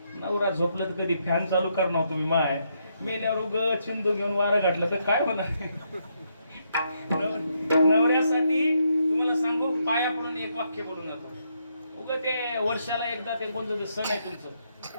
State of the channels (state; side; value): inverted; both; correlation -0.77